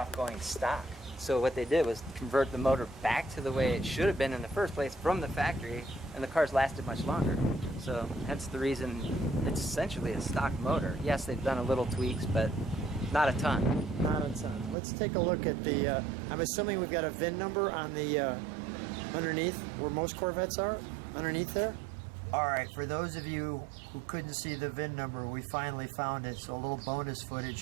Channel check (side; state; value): left; drops out; at 14.8 s